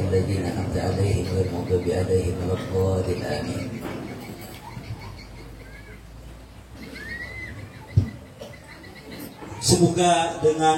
الذين أنعمت عليهم غير المغضوب عليهم ولا الضالين آمين. Semoga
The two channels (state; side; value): identical; both; correlation 1.00